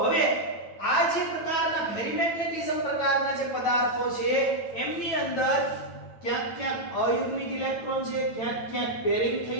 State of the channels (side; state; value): right; late; 9.1 ms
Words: હવે આ જે પ્રકારના ફેરીમેગ્નેટિઝમ પ્રકારના જે પદાર્થો છે એમની અંદર ક્યાંક ક્યાંક અયુગ્મિત ઇલેક્ટ્રોન છે, ક્યાંક ક્યાંક પેરિંગ